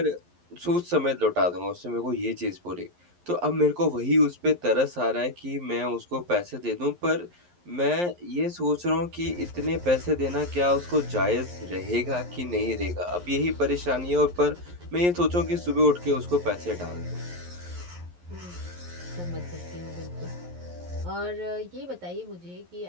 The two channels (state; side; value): late; left; 11 ms